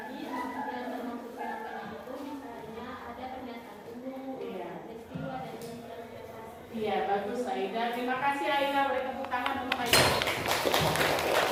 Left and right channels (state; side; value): identical; both; correlation 1.00